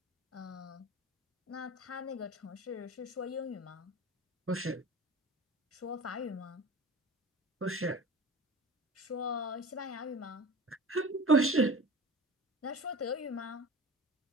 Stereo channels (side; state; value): both; normal; correlation 0.35